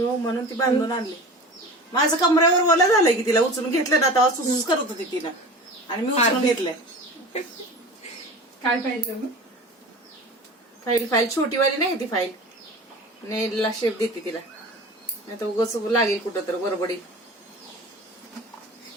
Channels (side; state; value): both; normal; correlation 0.36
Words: म्हणून ती बांधून आणली. माझं कमऱ्यावर ओला झालंय की तिला उचलून घेतलं ना तेव्हा सुसूस करत होती तिनं आणि मी उचलून घेतलंय. काय पाहिजे फाईल छोटीवाली नाही ती फाईल नेलला शेप देते तिला नाही तर उगाच लागेल कुठं तर बरोबडी.